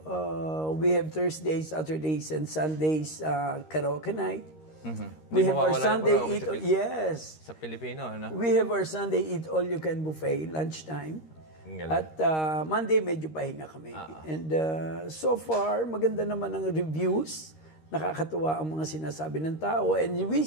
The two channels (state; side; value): late; right; 13 ms